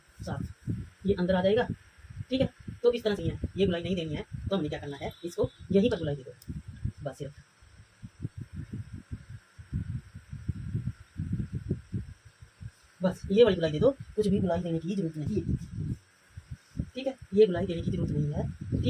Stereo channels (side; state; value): both; identical; correlation 1.00